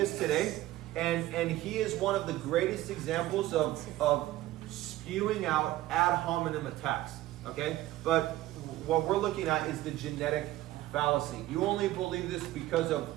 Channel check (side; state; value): left; quieter; 15.8 dB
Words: today, and he is one of the greatest examples of spewing out ad hominem attacks. Okay? But what we're looking at is the genetic fallacy. You only believe this because of